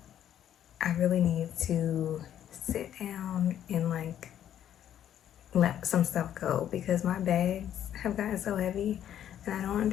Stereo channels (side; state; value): right; quieter; 10.6 dB